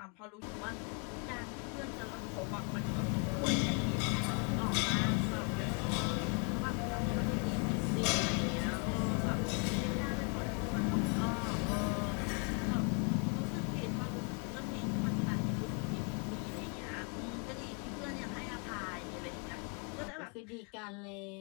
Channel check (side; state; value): right; quieter; 36.8 dB